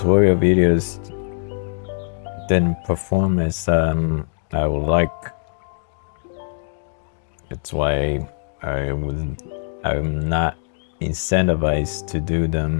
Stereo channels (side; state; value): right; silent; digital silence